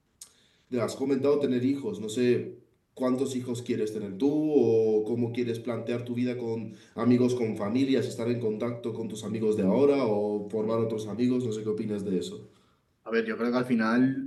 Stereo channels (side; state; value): both; identical; correlation 1.00